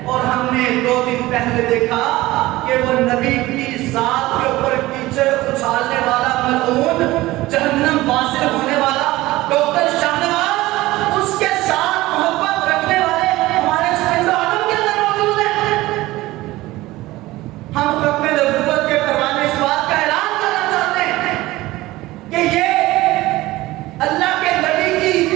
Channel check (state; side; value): quieter; left; 18.2 dB